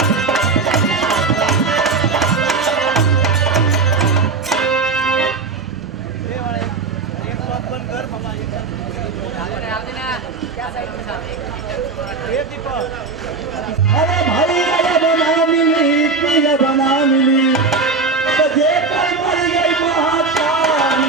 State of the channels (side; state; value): left; quieter; 4.4 dB